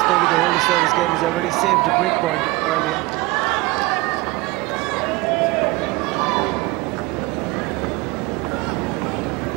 to hold the service game. He's already saved a break point earlier.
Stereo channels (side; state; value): left; quieter; 21.9 dB